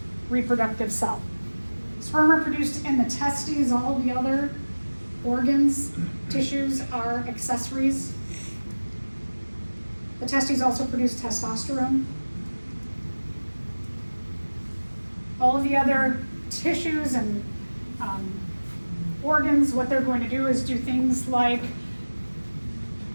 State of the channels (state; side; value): inverted; both; correlation -1.00